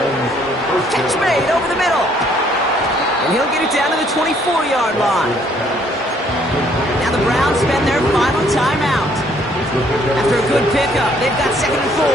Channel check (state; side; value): normal; both; correlation 0.64